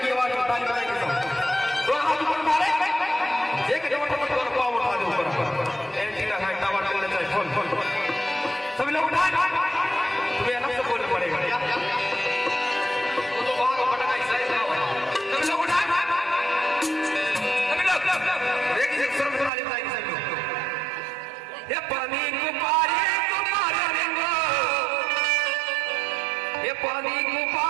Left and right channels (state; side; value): drops out; left; at 19.5 s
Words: ही आवाज में ताली बजाएंगे सब। दो हाथ ऊपर उठा ले, एक जब पाँव उठा दे ऊपर, एक है टावर चलने चाहिए, सभी लोग उठाए।